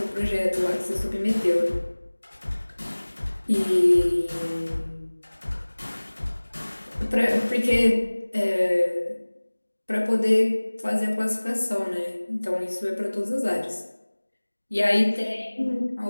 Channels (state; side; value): inverted; both; correlation -1.00